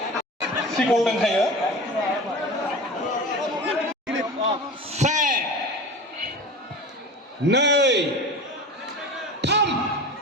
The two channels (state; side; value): normal; both; correlation 0.33